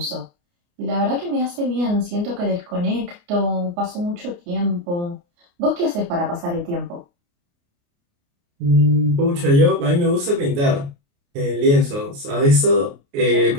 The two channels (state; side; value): late; left; 29 ms